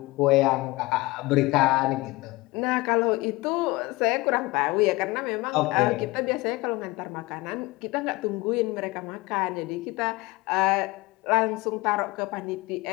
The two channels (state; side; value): quieter; right; 21.8 dB